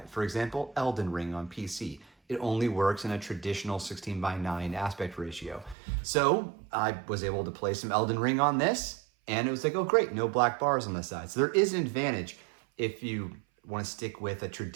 For example, Elden Ring on PC. It only works in a traditional 16:9 aspect ratio. So I was able to play some Elden Ring on this, and it was like, oh great, no black bars on the side. So there is an advantage if you want to stick with a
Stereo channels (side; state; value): left; drops out; at 5.8 s